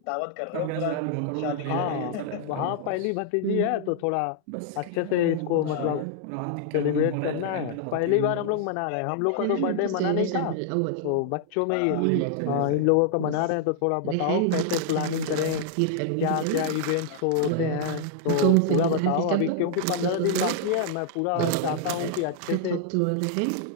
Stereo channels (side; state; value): both; different; correlation -0.01